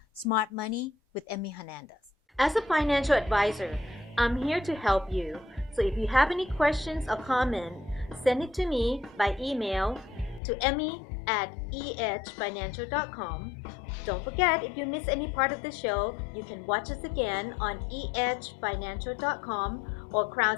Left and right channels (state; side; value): drops out; right; at 10.4 s